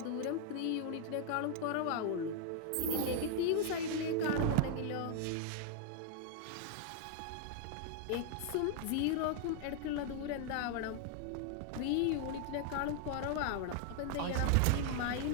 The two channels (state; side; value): different; both; correlation 0.00